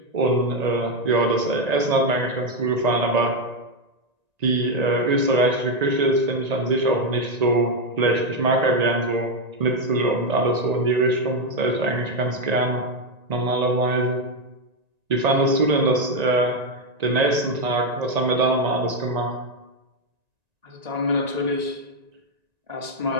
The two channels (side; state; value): left; late; 1.9 ms